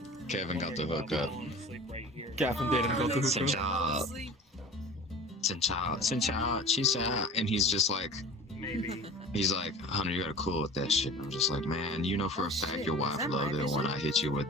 Kevin got the hookup. Kevin didn't go to the hookup. And he's just like, he's like, "Hunter, you gotta cool with that shit." And I'm just like, "Man, you know for a fact your wife loved it when I hit you with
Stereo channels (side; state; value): both; normal; correlation 0.39